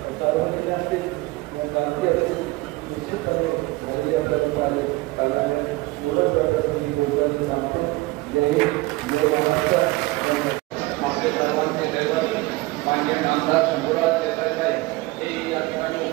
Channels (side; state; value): left; quieter; 21.2 dB